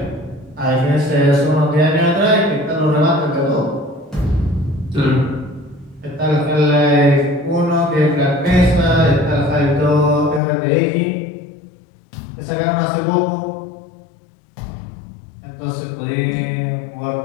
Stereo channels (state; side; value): drops out; right; at 10.4 s